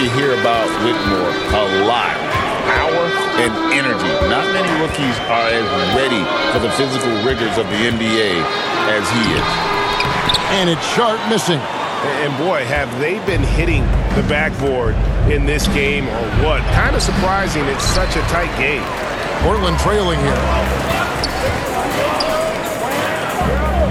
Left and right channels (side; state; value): both; identical; correlation 1.00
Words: hear about Whitmore a lot: power and energy. Not many rookies are as ready for the physical rigors of the NBA as he is. And it's Sharp missing. And boy, have they been hitting the backboard in this game or what? Kind of surprising. It's such a tight game. Portland trailing here.